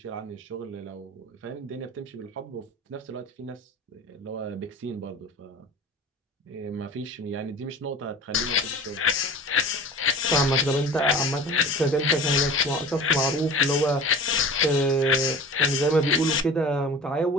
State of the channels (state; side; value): normal; both; correlation 0.39